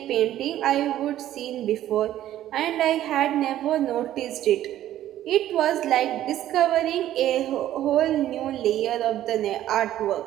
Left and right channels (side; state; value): left; quieter; 12.8 dB